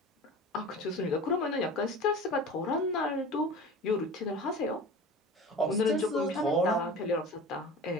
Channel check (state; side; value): normal; both; correlation 0.36